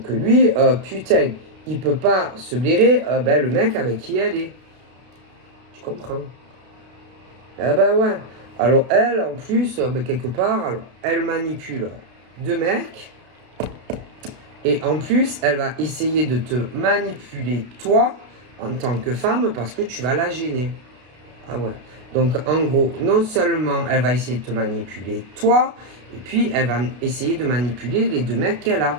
lui, putain, il peut pas se blairer le mec avec qui elle est. Tu comprends? Ah bah ouais. Alors elle, en plus, quelque part, alors, elle manipule deux mecs. Et en plus, elle va essayer de te manipuler toi en tant que femme parce que tu vas la gêner. Ah ouais. Donc en gros, non seulement elle va essayer de te manipuler toi, et puis elle va essayer de manipuler les deux mecs qu'elle a.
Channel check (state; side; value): late; left; 32 ms